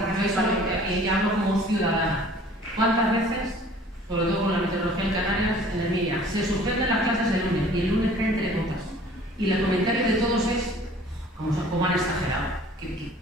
Y ya hablo como ciudadana. ¿Cuántas veces, sobre todo con la meteorología en Canarias, en el MIA, se suspenden las clases el lunes y el lunes caen 3 gotas? Y el comentario de todos es cómo han exagerado,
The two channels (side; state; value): both; normal; correlation 0.51